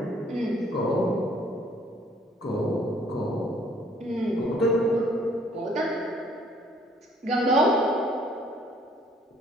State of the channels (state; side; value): normal; both; correlation 0.61